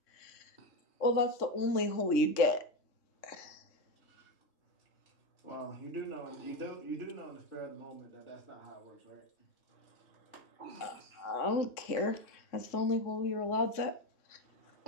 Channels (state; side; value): late; right; 3.6 ms